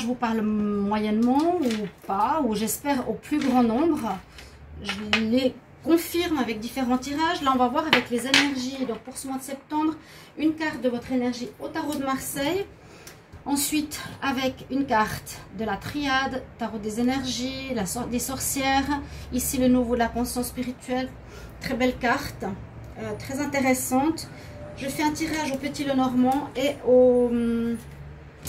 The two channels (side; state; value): both; identical; correlation 1.00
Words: vous parle moyennement ou pas, ou j'espère au plus grand nombre, je les confirme avec différents tirages. Là, on va voir avec les énergies. Donc, pour ce mois de septembre, une carte de votre énergie au tarot de Marseille. Ensuite, avec une carte de la triade, tarot des énergies, des sorcières. Ici, le nouveau de la conscience spirituelle. Très belle carte, très intéressante. Je fais un tirage au Petit Lenormand et